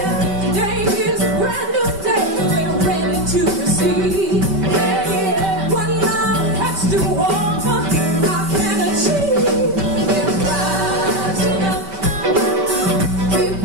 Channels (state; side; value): late; left; 5.2 ms